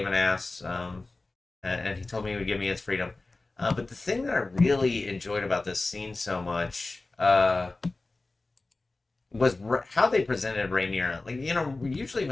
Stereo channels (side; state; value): right; quieter; 3.3 dB